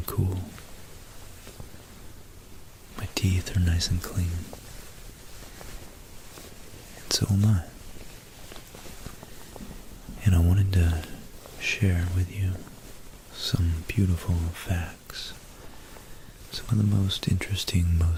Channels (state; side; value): identical; both; correlation 1.00